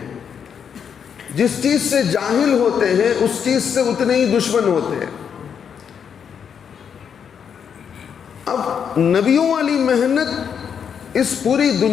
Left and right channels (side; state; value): right; quieter; 7.5 dB